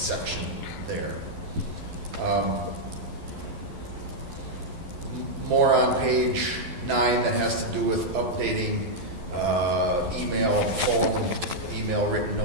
there. More on page 9 that has to do with updating email, phone, email, written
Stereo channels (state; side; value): late; left; 11 ms